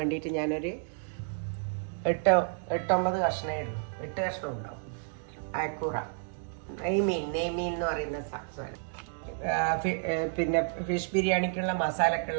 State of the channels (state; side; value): silent; left; digital silence